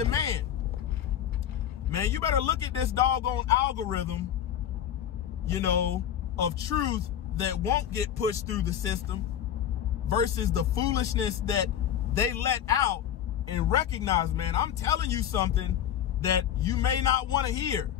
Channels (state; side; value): quieter; right; 10.0 dB